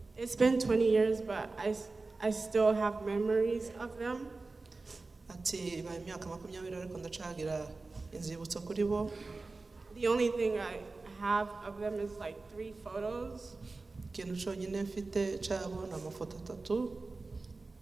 it's been 20 years, but I still have memories of them. Ati ba imyaka 20 ariko ndacagira inzibutso kuri bo. The only thing I have of them is like 3 photos. Ikintu cyonyine mfite cyabo ni amafoto 3.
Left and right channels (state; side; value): quieter; left; 3.6 dB